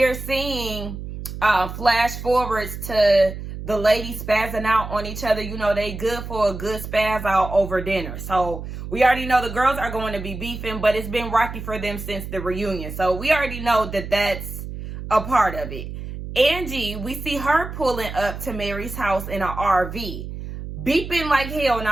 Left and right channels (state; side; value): noise; right; hum, 9 dB below the sound